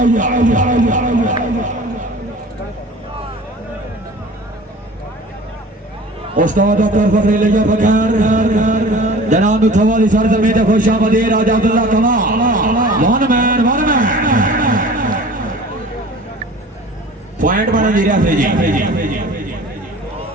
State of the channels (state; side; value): normal; both; correlation 0.43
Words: उस्ताद doctor फखरी लिया बकर जनाब थवाली सरजमीन खुशामदी राजा Abdullah comma one man point बना जी रहा जी